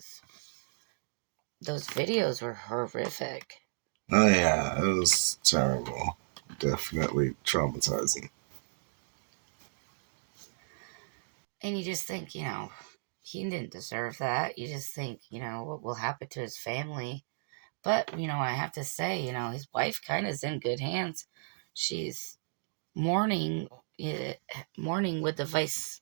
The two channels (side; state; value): left; silent; digital silence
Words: videos were horrific. Oh yeah, it was terrible. Definitely traumatizing. And you just think, he didn't deserve that. You just think, what will happen to his family. But, I have to say, his wife kind of is in good hands. She's mourning, eh, mourning with the vice